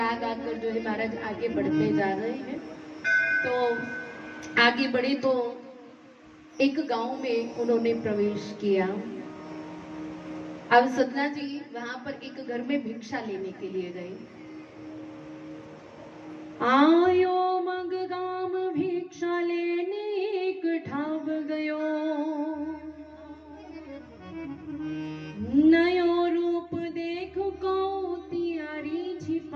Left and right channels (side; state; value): both; identical; correlation 1.00